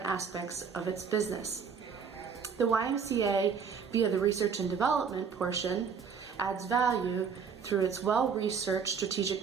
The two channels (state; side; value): quieter; left; 6.3 dB